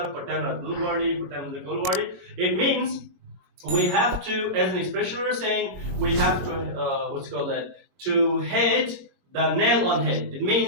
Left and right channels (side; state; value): left; late; 22 ms